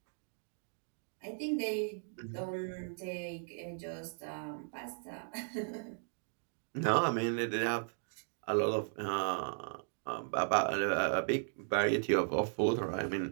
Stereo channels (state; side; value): silent; left; digital silence